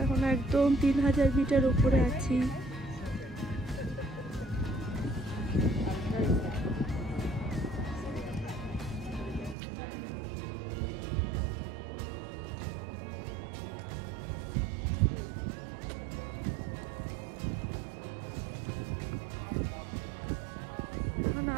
এখন একদম 3000 মিটার উপরে আছি।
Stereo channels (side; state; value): left; drops out; at 9.6 s